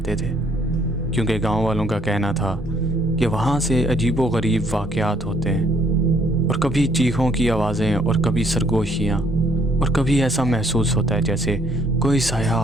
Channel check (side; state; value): both; normal; correlation 0.65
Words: थे, क्योंकि गांव वालों का कहना था कि वहां से अजीबो गरीब वाक़यात होते हैं, और कभी चीखों की आवाज़ें और कभी सरगोशियाँ, और कभी ऐसा महसूस होता है जैसे कोई साया